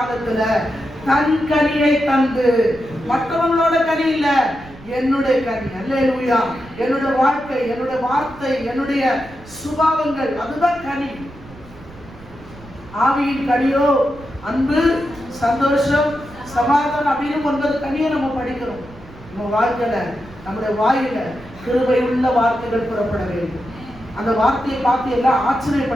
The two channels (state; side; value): noise; right; rumble, 20 dB below the sound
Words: தன் கனியை தந்து, மற்றவங்களோட கனி இல்ல, என்னுடைய கனி. அல்லேலூயா. என்னுடைய வாழ்க்கை, என்னுடைய வார்த்தை, என்னுடைய சுபாவங்கள், அதுதான் கனி. ஆவியின் கனியோ அன்பு, சந்தோஷம், சமாதானம் அப்படின்னு 9 கனியை நம்ம படிக்கிறோம். நம்ம வாழ்க்கையில, நம்முடைய வாயில கிருபை உள்ள வார்த்தைகள் புறப்பட வேண்டும். அந்த வார்த்தையை பார்த்து எல்லாம்